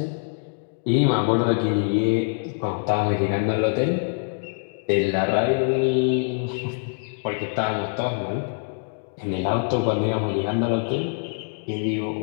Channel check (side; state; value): right; silent; digital silence